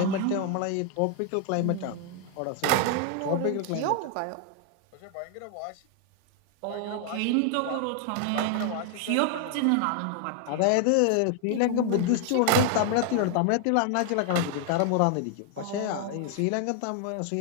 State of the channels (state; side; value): different; both; correlation 0.00